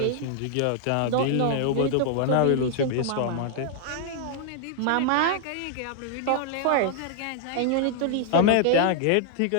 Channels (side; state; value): both; different; correlation 0.00